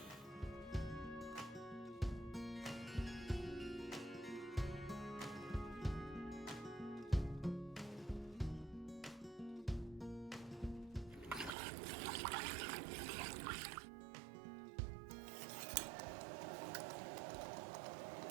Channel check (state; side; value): drops out; left; at 11.6 s